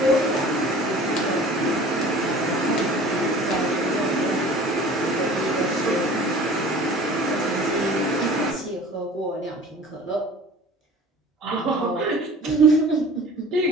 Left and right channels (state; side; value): normal; both; correlation 0.45